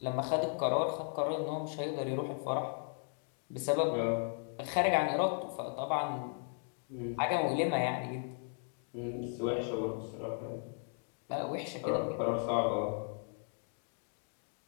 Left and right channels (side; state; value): right; silent; 54 dB below the other